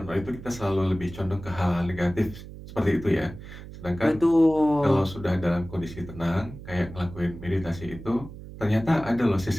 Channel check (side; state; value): right; noise; hum, 14 dB below the sound